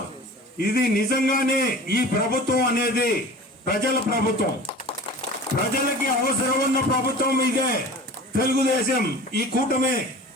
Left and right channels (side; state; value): both; normal; correlation 0.39